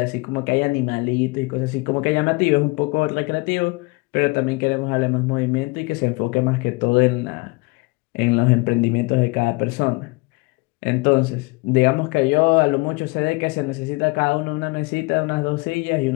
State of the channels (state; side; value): quieter; right; 26.4 dB